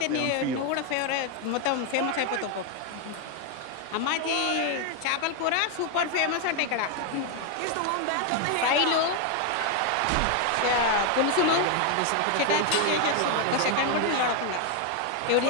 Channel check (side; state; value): both; different; correlation 0.01